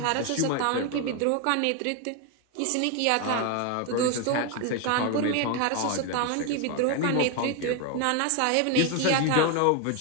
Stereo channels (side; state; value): both; different; correlation 0.01